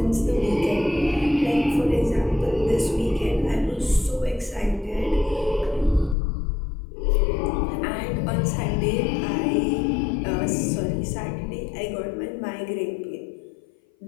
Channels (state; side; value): drops out; right; at 6.2 s